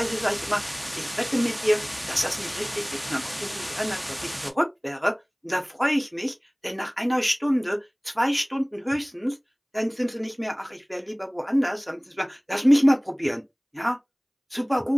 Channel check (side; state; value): both; identical; correlation 1.00